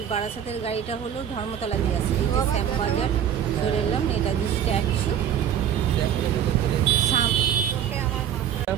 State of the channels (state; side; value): quieter; left; 9.4 dB